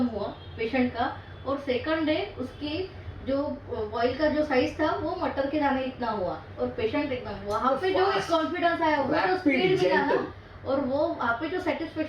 हुआ पेशेंट का और सेकंड डे उसकी जो बॉइल का जो साइज था वो मटर के दाने इतना हुआ और पेशेंट एकदम वहाँ पे जो एक कॉन्फिडेंस आया, वो जो स्पीड मिला ना और वो वहाँ पे जो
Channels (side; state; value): both; identical; correlation 1.00